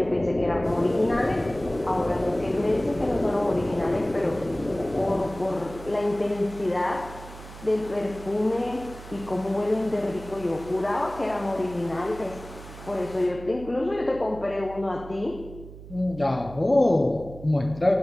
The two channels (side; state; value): right; noise; hum, 15 dB below the sound